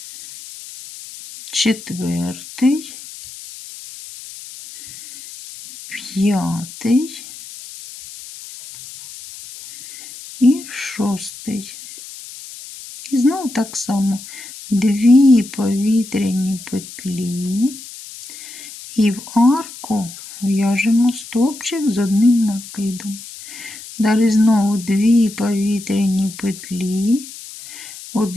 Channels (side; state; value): left; noise; hiss, 15 dB below the sound